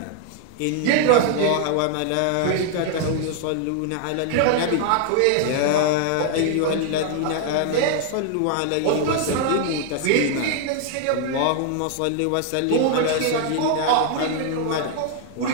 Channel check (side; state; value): both; different; correlation 0.00